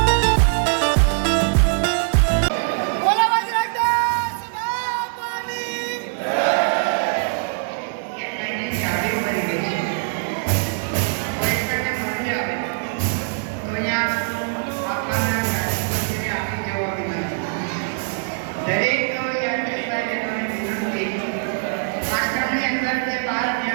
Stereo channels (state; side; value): silent; left; 64 dB below the other